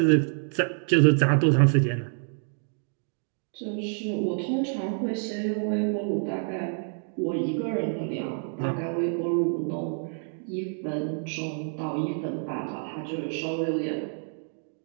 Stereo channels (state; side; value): silent; left; 55 dB below the other